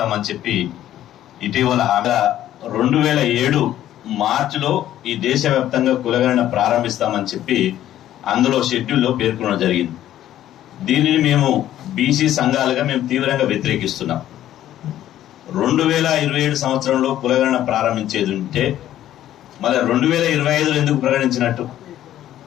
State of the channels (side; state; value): right; quieter; 12.4 dB